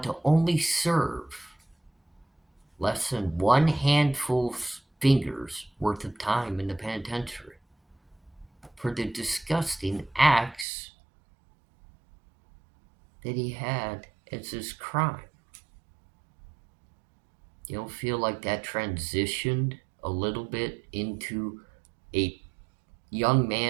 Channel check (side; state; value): left; drops out; at 10.7 s